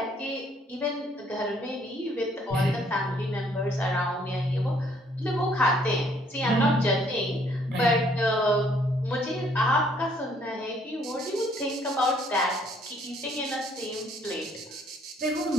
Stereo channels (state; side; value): normal; both; correlation 0.65